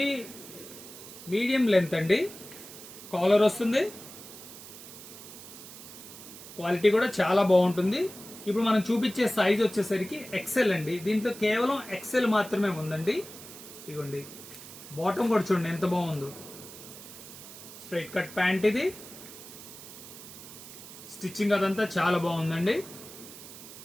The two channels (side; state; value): right; noise; hiss, 15 dB below the sound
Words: మీడియం లెంత్ అండి. కాలర్ వస్తుంది, క్వాలిటీ కూడా చాలా బాగుంటుంది. ఇప్పుడు మనం చూపించే సైజ్ వచ్చేసరికి ఎక్సెల్ అండి. దీంట్లో కేవలం ఎక్సెల్ మాత్రమే ఉందండి. ఇదిగోండి, బాటమ్ కూడా చూడండి ఎంత బాగుందో. స్ట్రైట్ కట్ ప్యాంట్ ఇది. స్టిచ్చింగ్ అదంతా చాలా బాగుందండి,